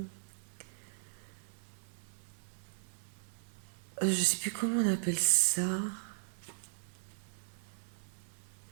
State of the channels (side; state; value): left; silent; 53 dB below the other